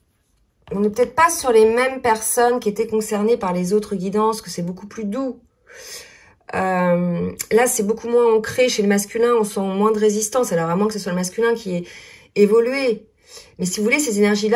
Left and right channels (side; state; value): both; identical; correlation 1.00